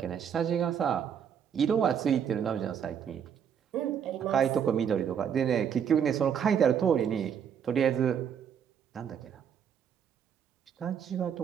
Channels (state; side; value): quieter; left; 8.1 dB